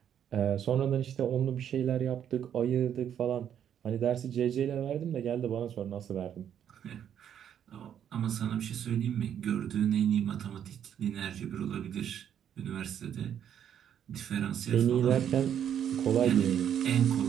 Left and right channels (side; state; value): left; quieter; 9.3 dB